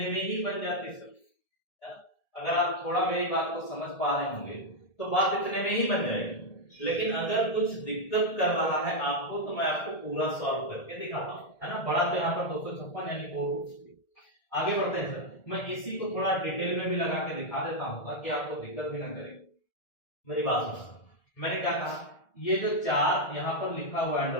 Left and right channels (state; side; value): late; right; 1.8 ms